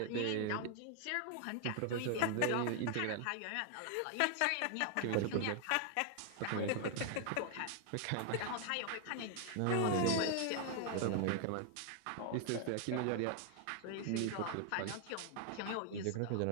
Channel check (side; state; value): both; different; correlation 0.00